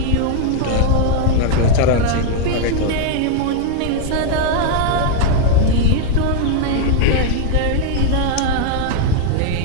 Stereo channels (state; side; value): different; both; correlation 0.00